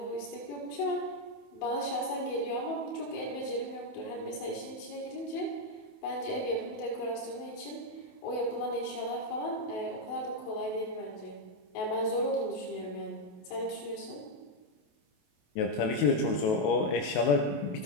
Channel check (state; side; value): late; right; 28 ms